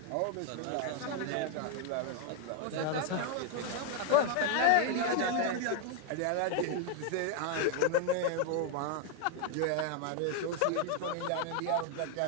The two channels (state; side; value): different; both; correlation 0.00